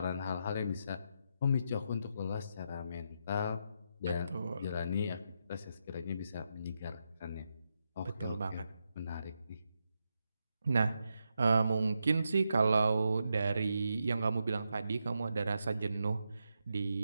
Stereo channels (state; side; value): inverted; both; correlation -0.84